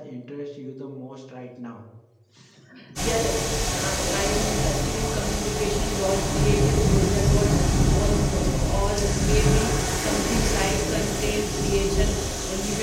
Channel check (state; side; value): identical; both; correlation 1.00